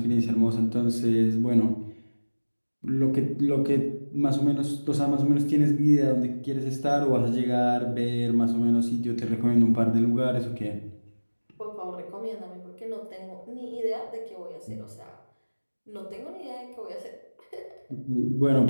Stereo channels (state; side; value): inverted; both; correlation -1.00